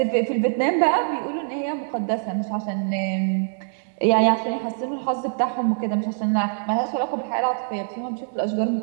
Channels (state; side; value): silent; left; 63 dB below the other